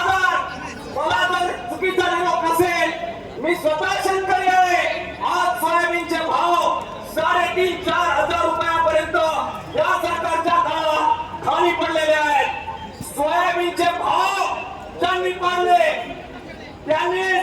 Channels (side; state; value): both; identical; correlation 1.00